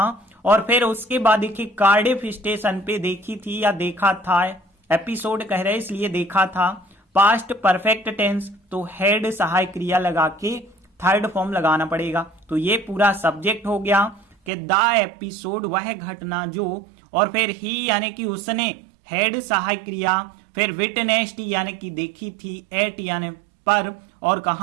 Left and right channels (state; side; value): drops out; left; at 14.5 s